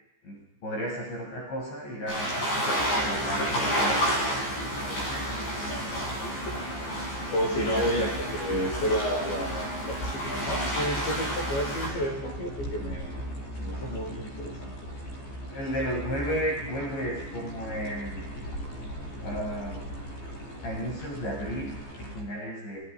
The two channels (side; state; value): right; late; 14 ms